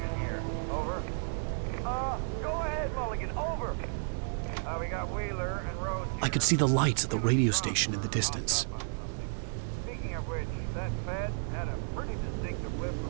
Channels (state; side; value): silent; left; digital silence